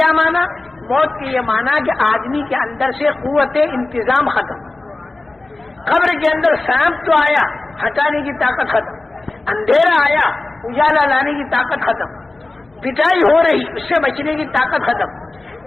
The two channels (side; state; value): right; quieter; 3.1 dB